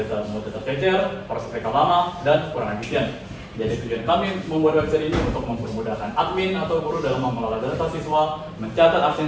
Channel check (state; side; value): identical; both; correlation 1.00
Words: data cecer, proses rekam lama, dan kurang efisien. Jadi tujuan kami membuat website ini untuk mempermudahkan admin atau guru dalam mengelola data siswa, mencatat